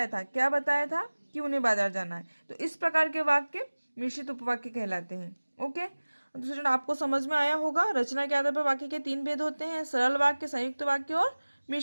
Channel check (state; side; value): inverted; both; correlation -1.00